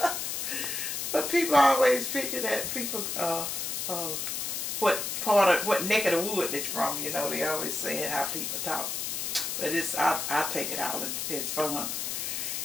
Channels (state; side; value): noise; left; hiss, 2 dB below the sound